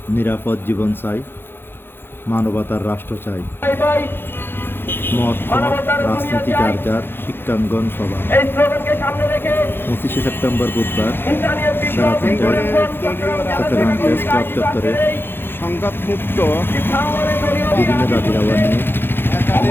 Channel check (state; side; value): late; right; 0.10 ms